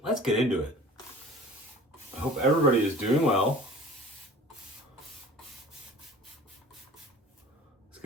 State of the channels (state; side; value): normal; both; correlation 0.43